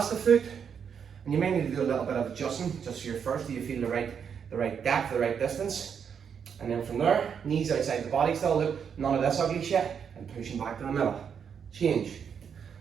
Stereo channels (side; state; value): left; quieter; 7.3 dB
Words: the foot. And you may need to do a little bit of adjusting just here first. Do you feel the right depth, the right distance? And then from there, knees outside the body still, look, none of this ugly shit, and pushing back to the middle. Change.